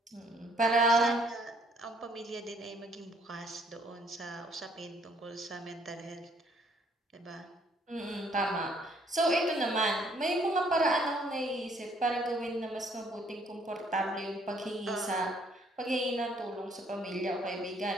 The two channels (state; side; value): normal; both; correlation 0.64